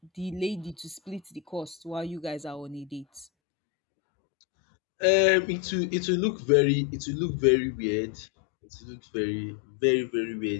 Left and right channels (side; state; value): right; drops out; at 3.2 s